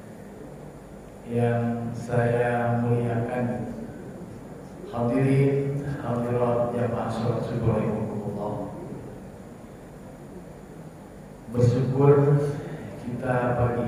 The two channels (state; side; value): identical; both; correlation 1.00